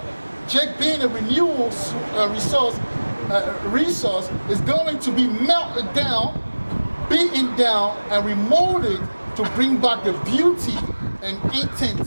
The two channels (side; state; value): both; inverted; correlation -1.00